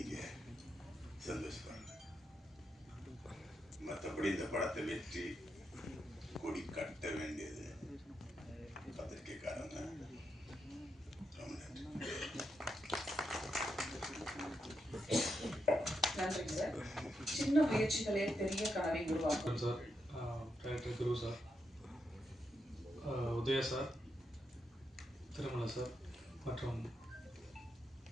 சந்தோஷப்படுறேன். மற்றபடி இந்த படத்தை வெற்றி கொடி கட்ட வேண்டியது பத்திரிகைக்காரங்க. நன்றி சார். சின்ன முயற்சிகளே பெரிய கனவை உருவாக்கும். சார், டைரக்டர் குரு சார், உதய சார், திருமலை சார் மற்றும்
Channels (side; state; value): both; normal; correlation 0.84